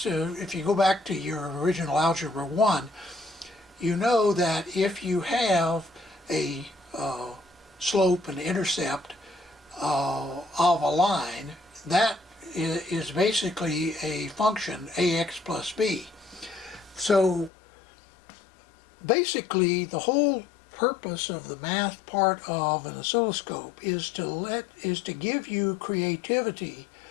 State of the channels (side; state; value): right; drops out; at 17.5 s